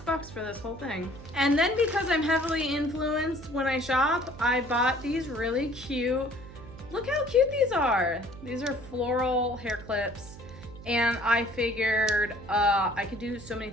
for this whole thing. And then because I'm heavily influenced when I shop, I bought these really cute, look how cute these are. These are floral hair clips. And I figured I could do so many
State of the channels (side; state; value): right; noise; hum, 16 dB below the sound